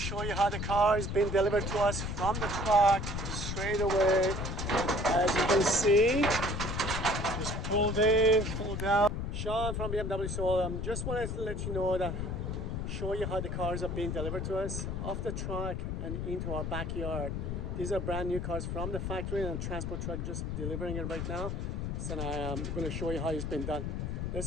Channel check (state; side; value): noise; left; rumble, 3 dB below the sound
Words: you how the car is being delivered to us from the truck straight away. As you can see, just pulled in, pulled out. Sean from BMW. So just wanted to let you know that, show you how the cars are being delivered to us off the truck and into our backyard. These are brand new cars from the factory and transport truck just delivering it right now. So I'm going to show you how it's been done.